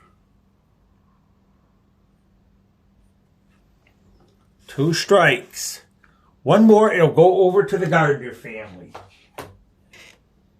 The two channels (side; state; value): both; identical; correlation 1.00